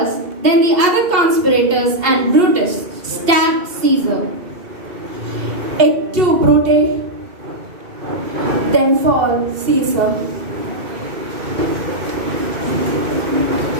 then the other conspirators and Brutus stabbed Caesar. Et tu, Brute, then fall Caesar.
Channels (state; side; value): late; left; 2.7 ms